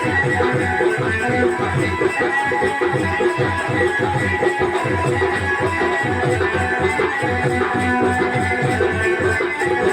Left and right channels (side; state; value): both; identical; correlation 1.00